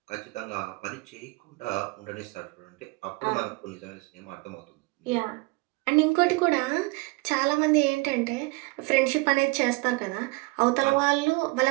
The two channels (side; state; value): left; quieter; 25.4 dB